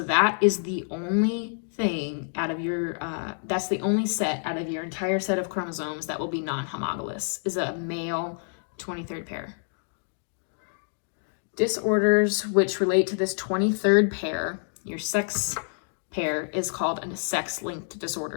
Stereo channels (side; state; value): right; silent; digital silence